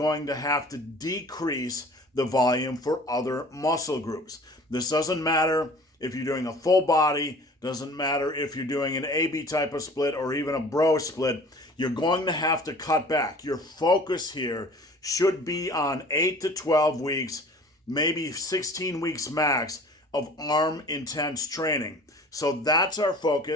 to have to decrease the volume for other muscle groups. This doesn't matter if you're doing a full body, doesn't matter if you're doing an AB type of split or even a bro split, you're going to have to cut back. Your focus here should be on 8 to 12 weeks, maybe 16 weeks max of arm intense training. So that's our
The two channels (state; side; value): normal; both; correlation 0.46